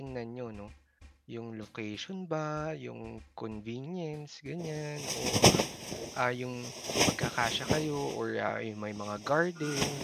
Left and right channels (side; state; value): both; identical; correlation 1.00